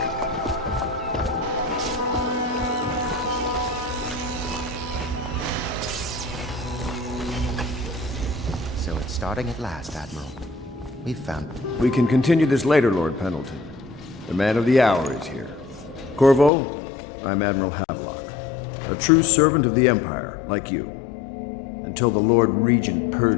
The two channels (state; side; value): drops out; right; at 16.5 s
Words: So it's starting at last, Admiral. We've found... We can continue this later, Lord Pendleton. The man of the hour is here. Corvo, I'm Admiral Havelock. A true servant of the Empire, like you. Until the Lord Regent